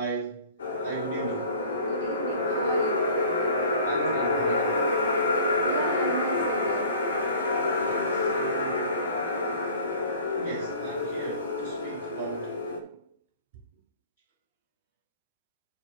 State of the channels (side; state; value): both; inverted; correlation -0.46